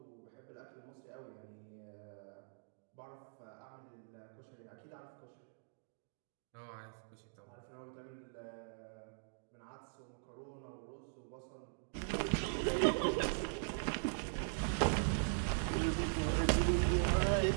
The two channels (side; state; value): left; silent; digital silence